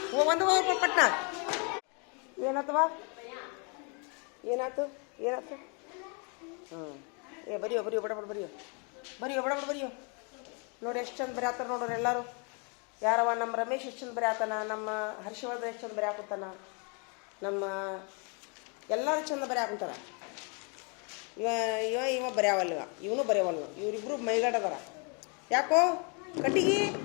ಒಂದು ಪಟ್ನ ಏನಾತವ ಏನಾಯ್ತು ಏನಾಯ್ತು. ಬರಿಯೋ ಬರಿಯೋ ಬಡಬಡ ಬರಿಯೋ ಬರಿಯೋ ಬಡಬಡ ಬರಿಯೋ. ನೋಡಿ ಎಷ್ಟು ಚಂದ ಬರೆಯತ್ತಾರ ನೋಡ್ರಿ ಎಲ್ಲರೂ. ಯಾರವ ನಮ್ಮ ರಮೇಶ್ ಎಷ್ಟು ಚಂದ ಬರೆಯತ್ತಾನ, ನಮ್ಮ ಹರ್ಷವರ್ಧನ್ ಎಷ್ಟು ಚಂದ ಬರೆಯಾಕುತ್ತಾನ, ನಮ್ಮ ಎಲ್ಲರೂ ಚಂದ ಬರೆಯಾಕುಂತಾರ. ಇವ ಬರೆಯವಲ್ವ, ಇವನು ಬರೆಯವಲ್ವ. ಇವರಿಬ್ರು ಮೈಗಡದಾರ. ಯಾಕೋ ಕಟ್ಟಿಗಿ,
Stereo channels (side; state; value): right; quieter; 36.0 dB